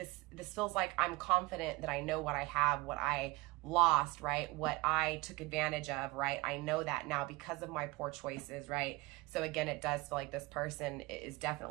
feels like I'm confident that I know what I have, what I lost, right? What I took advantage of, right? I know that now because of my poor choices, right? So again, it does feel like this person is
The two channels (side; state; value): left; quieter; 22.4 dB